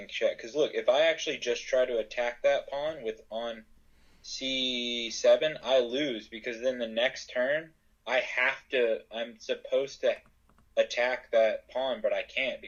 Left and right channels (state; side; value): identical; both; correlation 1.00